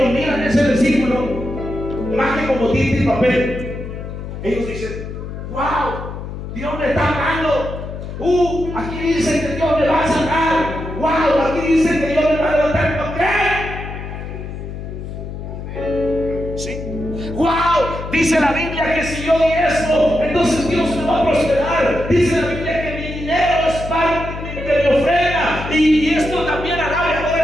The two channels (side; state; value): left; noise; hum, 8 dB below the sound